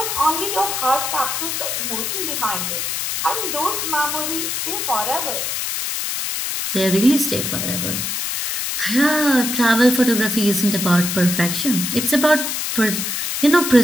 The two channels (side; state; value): left; noise; hiss, 2 dB below the sound